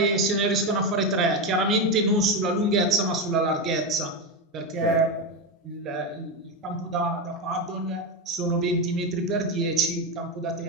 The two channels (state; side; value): normal; both; correlation 0.12